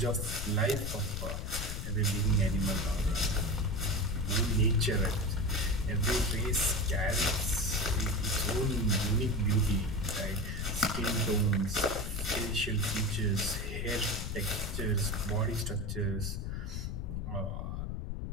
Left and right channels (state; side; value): noise; left; rumble, 4 dB below the sound